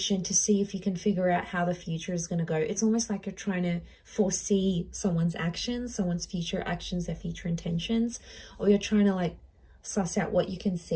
to see if you can figure out how the future is going to go. It's almost like you're trying to foresee someone's actions, someone's future actions, their future intentions, or you're trying to like suss out what you can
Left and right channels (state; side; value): identical; both; correlation 1.00